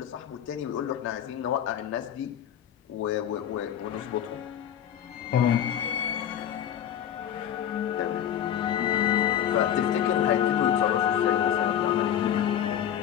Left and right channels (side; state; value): right; quieter; 10.0 dB